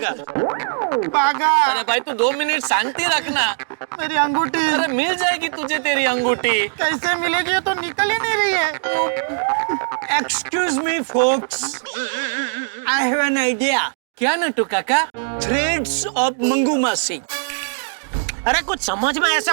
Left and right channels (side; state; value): left; silent; digital silence